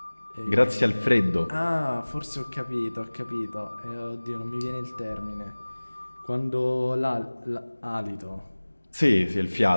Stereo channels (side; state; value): both; inverted; correlation -1.00